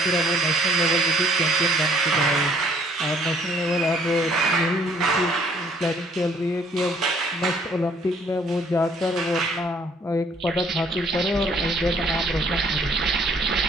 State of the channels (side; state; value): both; normal; correlation 0.62